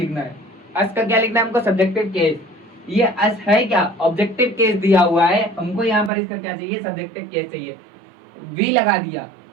है, अस का क्या लिखना है हमको, सब्जेक्टिव केस। ये अस है क्या, ऑब्जेक्टिव केस दिया हुआ है हमको, यहाँ पर इसका क्या चाहिए, सब्जेक्टिव केस चाहिए, वी लगा दिया।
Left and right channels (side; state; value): left; drops out; at 6.1 s